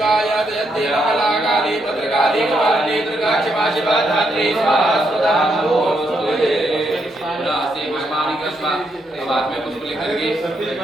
जयति महाकाली भद्रकाली कपालिनी दुर्गा क्षमा शिवा धात्री स्वाहा स्वधा नमोस्तुते नास्ति महिमानि कृष्णा। अब हाथ में पुष्प लेकर के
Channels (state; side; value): normal; both; correlation 0.78